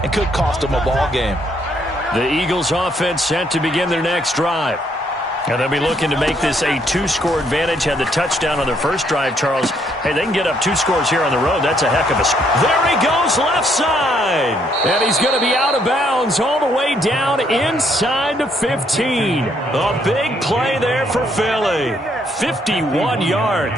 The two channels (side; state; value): both; normal; correlation 0.70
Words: and could cost them a ball game? The Eagles offense set to begin their next drive. And they'll be looking to make this a 2-score advantage. Had the touchdown on their first drive, Charles. Hey, they can get up 2 scores here on the road. That's a heck of a... There he goes, left side. And he's going to be out of bounds all the way down inside the 15. A big play there for Philly. 51